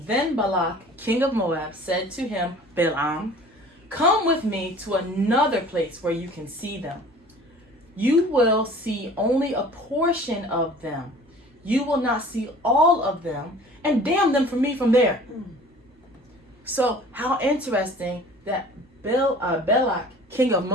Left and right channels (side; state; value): both; normal; correlation 0.47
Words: Then Balak, king of Moab, said to him, Balaam, come with me to another place where you can see them. You will see only a portion of them. You will not see all of them, and damn them for me from there. So how interesting that Balak, king of